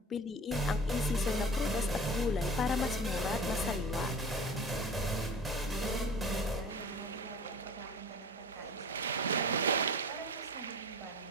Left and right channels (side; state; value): both; normal; correlation 0.39